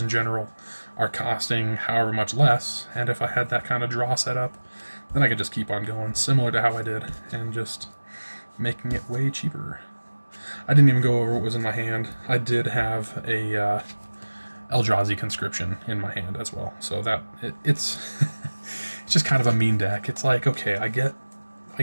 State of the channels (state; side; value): inverted; both; correlation -1.00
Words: general are costing however much less, and if I had that kind of draw set up, then I could just keep on going, similar to how I did, and just making it way cheaper. I didn't even go over what was in my hand. I did have a Eldrazi conscription in my hand as well, so that it's it's just kind of a mean deck. It's like, okay, I get